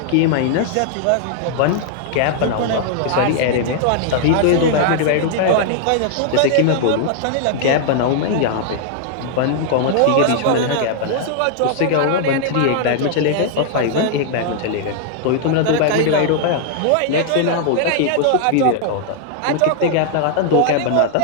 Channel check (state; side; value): different; both; correlation -0.01